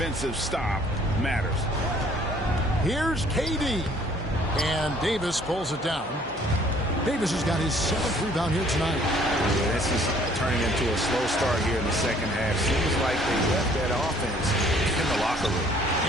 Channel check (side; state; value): both; normal; correlation 0.59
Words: stop matters. Here's KD. And Davis pulls it down. Davis has got his 7th rebound here tonight. Yeah, this is turning into a slow start here in the second half. Seems like they left that offense in the locker room.